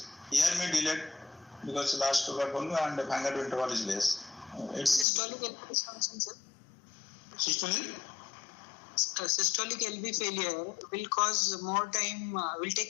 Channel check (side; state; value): right; drops out; at 5.1 s